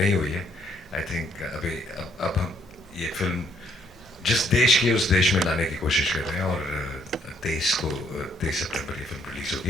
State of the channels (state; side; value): normal; both; correlation 0.68